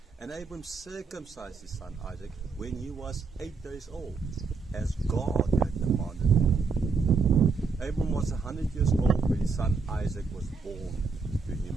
And Abram circumcised his son Isaac when he was 8 days old, as God had commanded him. Abram was 100 years old when his son Isaac was born to him.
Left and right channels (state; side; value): quieter; left; 4.7 dB